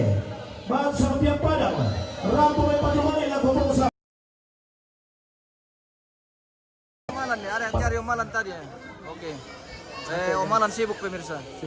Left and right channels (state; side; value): identical; both; correlation 1.00